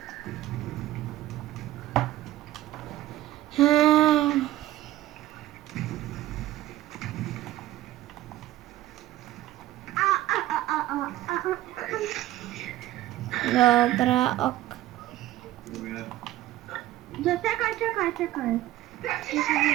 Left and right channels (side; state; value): left; quieter; 15.0 dB